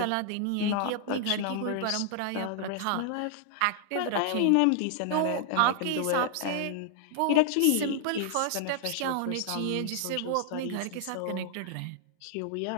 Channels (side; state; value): both; different; correlation -0.01